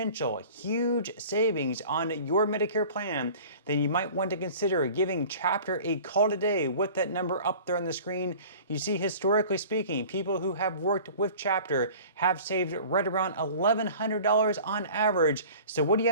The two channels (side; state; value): both; inverted; correlation -0.43